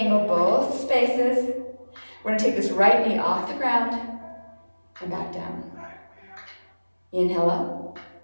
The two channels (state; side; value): inverted; both; correlation -1.00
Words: both spaces. We're going to take this right knee off the ground and back down. Inhale up